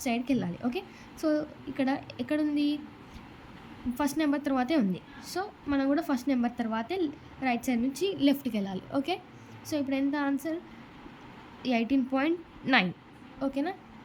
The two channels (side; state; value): both; identical; correlation 1.00